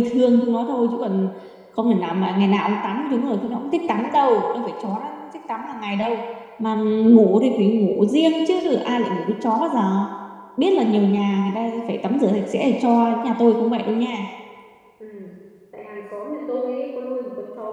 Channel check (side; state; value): both; identical; correlation 1.00